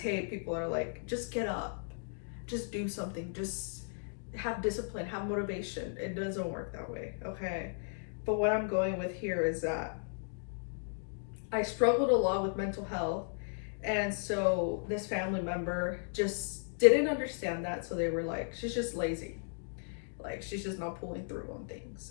hate people that are like, just get up, just do something, just have discipline, have motivation. It doesn't work that way, okay? But what I'm going with here is that I struggled a lot with mental health, and so this family member just didn't understand that. So they were like, she's just lazy, like she's just not pulling through on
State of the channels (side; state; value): right; silent; digital silence